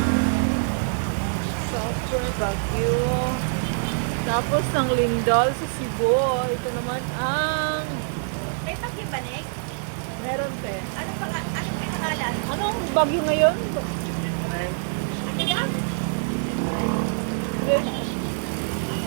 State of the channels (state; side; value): silent; left; digital silence